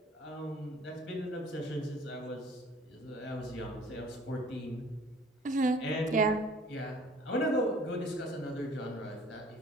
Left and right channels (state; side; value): normal; both; correlation 0.52